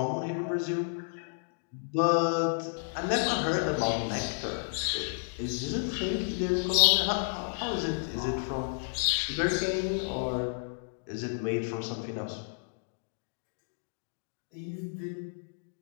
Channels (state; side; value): silent; right; digital silence